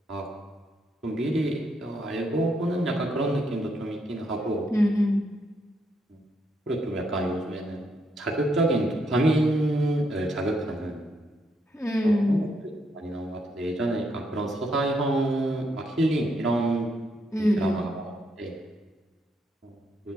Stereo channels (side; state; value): both; normal; correlation 0.76